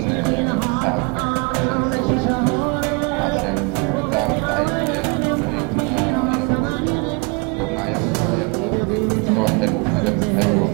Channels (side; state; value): left; quieter; 30.6 dB